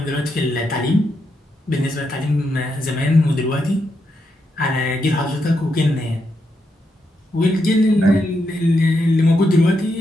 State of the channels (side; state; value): both; normal; correlation 0.82